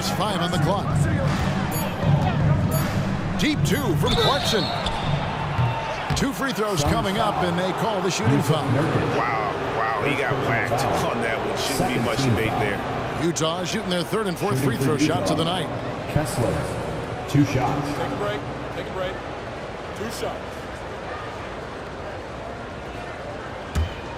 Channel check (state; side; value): identical; both; correlation 1.00